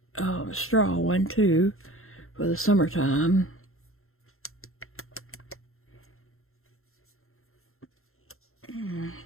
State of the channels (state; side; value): late; right; 0.62 ms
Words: straw one too for the summertime.